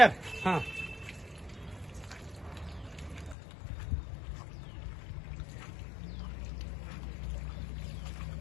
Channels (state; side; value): drops out; right; at 3.4 s